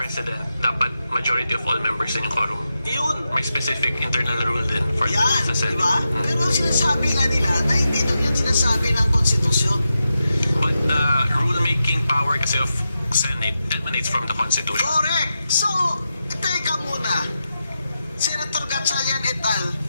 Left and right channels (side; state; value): both; inverted; correlation -0.89